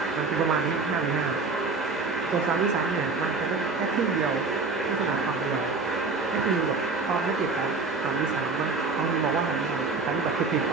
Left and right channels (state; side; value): quieter; left; 4.1 dB